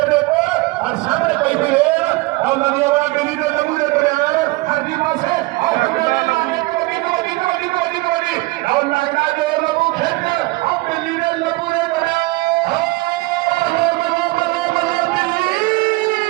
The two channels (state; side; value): quieter; left; 22.2 dB